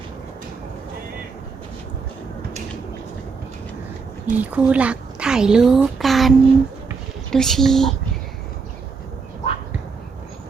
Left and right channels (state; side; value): quieter; left; 5.0 dB